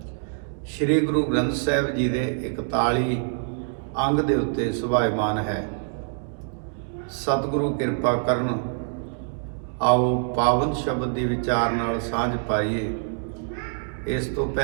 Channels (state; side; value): silent; left; 62 dB below the other